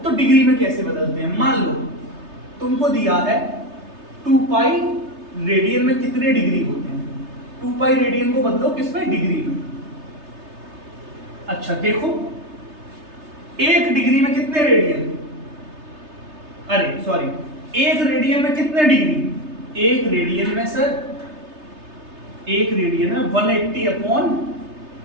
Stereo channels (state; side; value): late; left; 3.3 ms